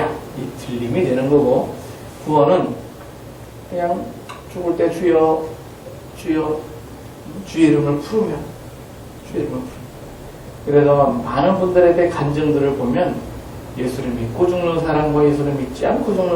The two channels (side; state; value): both; identical; correlation 1.00